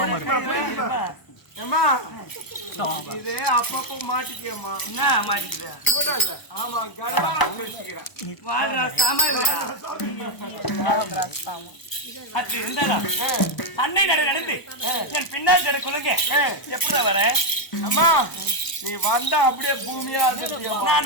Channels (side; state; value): right; late; 1.0 ms